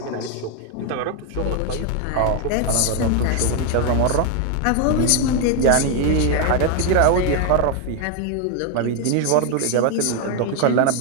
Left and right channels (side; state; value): both; different; correlation 0.01